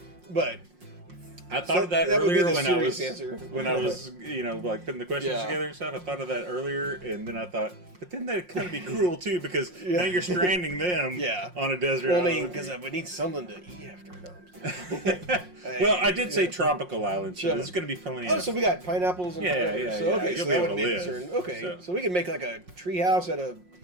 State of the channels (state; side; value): late; left; 5.6 ms